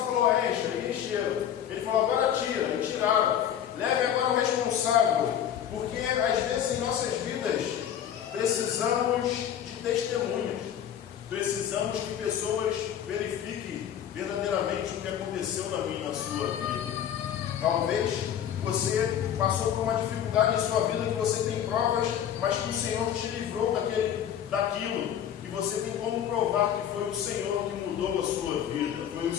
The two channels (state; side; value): quieter; right; 9.7 dB